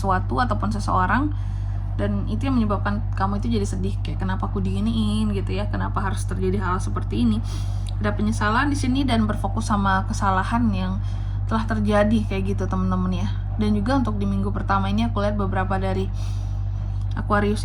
ataupun seseorang, dan itu yang menyebabkan kamu itu jadi sedih, kayak kenapa aku diginiin gitu ya, kenapa harus terjadi hal seperti ini. Ada penyesalan di sini dan berfokus sama kesalahan yang telah terjadi kayak gitu teman-teman ya. Dan juga untuk di minggu pertama ini aku lihat beberapa dari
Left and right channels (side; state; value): both; identical; correlation 1.00